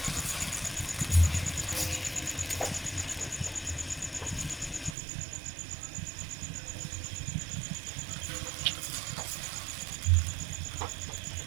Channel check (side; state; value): left; drops out; at 5.0 s